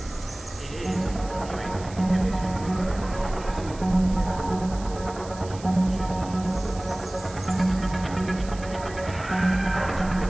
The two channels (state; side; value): noise; right; hiss, 18 dB below the sound